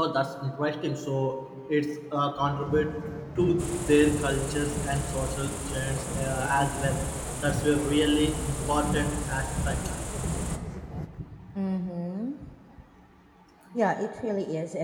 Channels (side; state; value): both; identical; correlation 1.00